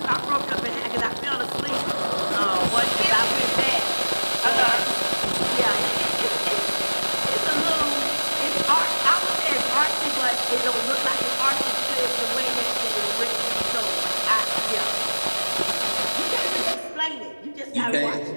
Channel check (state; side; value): inverted; both; correlation -1.00